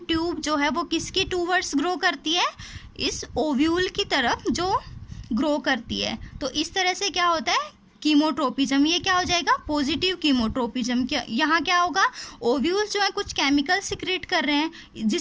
जो है वो किसकी टूवर्ड्स ग्रो करती है, इस ओव्यूल की तरफ जो ग्रो करती है। तो इस तरह से क्या होता है, कीमोट्रोपिज्म। ये क्या हो जाएगा, पॉजिटिव कीमोट्रोपिज्म। क्या यहाँ क्या होगा, ओव्यूल्स जो है कुछ केमिकल सिक्रेट कर रहे हैं,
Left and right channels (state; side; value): identical; both; correlation 1.00